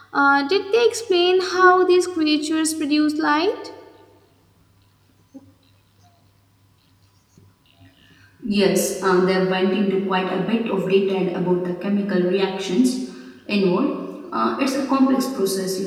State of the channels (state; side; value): identical; both; correlation 1.00